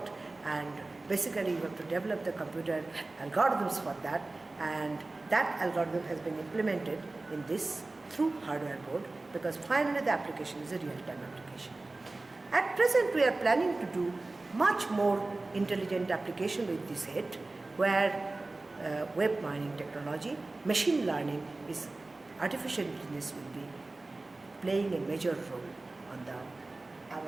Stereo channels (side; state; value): left; quieter; 3.2 dB